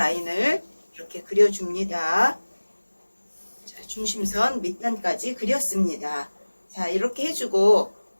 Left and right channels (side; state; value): both; inverted; correlation -1.00